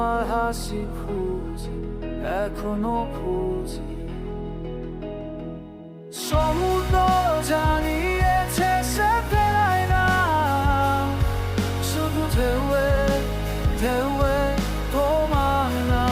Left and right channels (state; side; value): identical; both; correlation 1.00